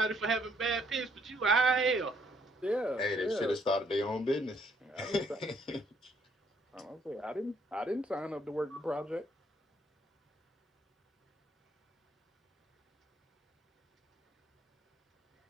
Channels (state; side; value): normal; both; correlation 0.68